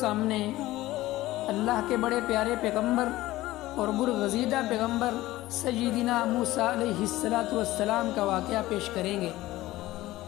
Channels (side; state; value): right; quieter; 16.9 dB